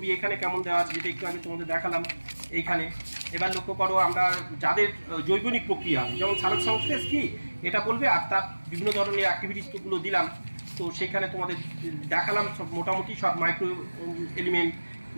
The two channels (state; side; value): inverted; both; correlation -1.00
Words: এখানে কেমন দেওয়া আছে, যেটা একটু আগে তোমাদের দেখালাম এইখানে। এবার লক্ষ্য করো আমরা যাদের জৈবনিক প্রক্রিয়া, যেমন সালোক সংশ্লেষ কি এটা বলবে, আর তার বিভিন্ন ধরনের অ্যাক্টিভিটিসগুলো দিলাম। তো সেখানে তোমাদের দেখালাম সব মোটামুটি সব মাইক্রো এলিমেন্ট